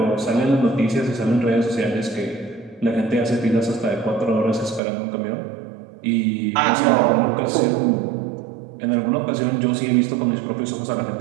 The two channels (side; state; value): left; drops out; at 4.8 s